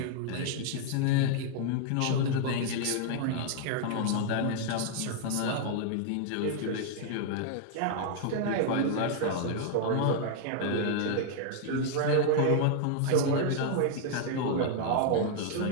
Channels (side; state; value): both; different; correlation -0.01